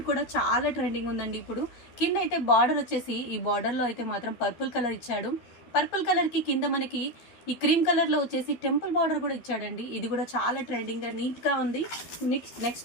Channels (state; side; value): late; right; 13 ms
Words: కూడా చాలా ట్రెండింగ్ ఉందండి ఇప్పుడు. కింద అయితే బార్డర్ వచ్చేసి ఈ బార్డర్లో అయితే మాత్రం పర్పుల్ కలర్ ఇచ్చాడు. పర్పుల్ కలర్కి కింద మనకి ఈ క్రీమ్ కలర్లో వచ్చేసి టెంపుల్ బార్డర్ కూడా ఇచ్చాడండి. ఇది కూడా చాలా ట్రెండింగ్గా నీట్గా ఉంది.